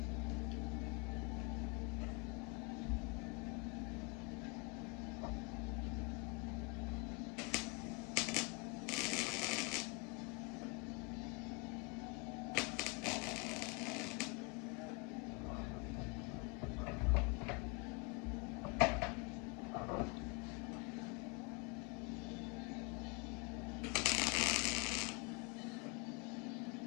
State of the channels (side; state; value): right; quieter; 32.4 dB